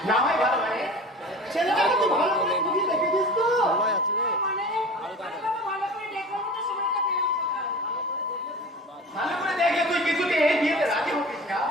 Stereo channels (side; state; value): both; normal; correlation 0.37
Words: না হয় ভালো মানে ছেলেটাকে তুই ভালো করে বুঝি দেখেছিস তো? ভালো করে দেখে তুই কিছুতে এই বিয়েতে রাজি হতিস না